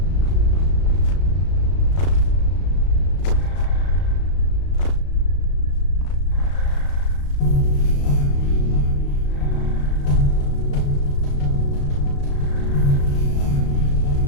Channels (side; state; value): right; late; 35 ms